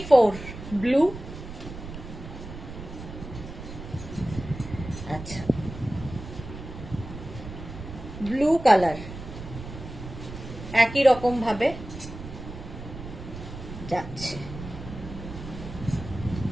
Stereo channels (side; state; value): right; noise; rumble, 11 dB below the sound